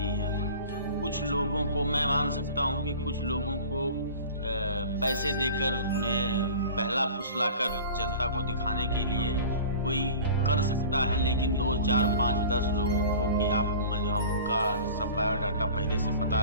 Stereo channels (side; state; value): both; inverted; correlation -0.40